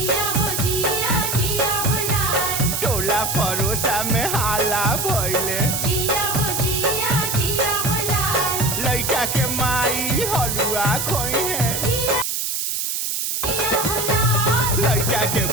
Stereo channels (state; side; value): noise; right; hiss, 1 dB below the sound